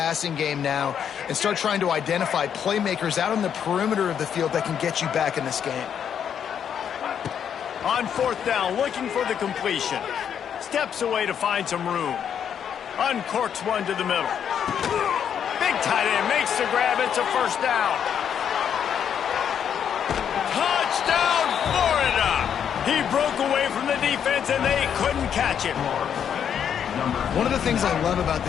game now and start trying to identify playmakers out on the perimeter of the field that can get you back in this game. On 4th down, looking for the completion. Steps away to find some room. Uncorks one to the middle. Big tight end makes the grab. It's a 1st down. Touchdown, Florida! He broke away from the defense, and they couldn't catch him. One of the things I love about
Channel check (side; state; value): right; quieter; 8.4 dB